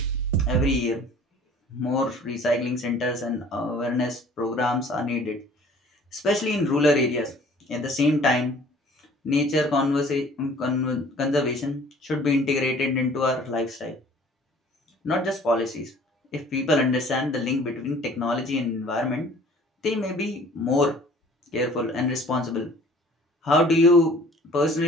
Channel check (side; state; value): both; normal; correlation 0.51